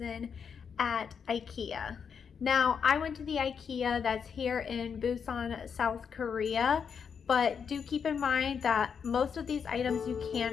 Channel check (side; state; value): right; quieter; 6.7 dB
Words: at Ikea. Now, I went to the Ikea that's here in Busan, South Korea. But do keep in mind that most of these items you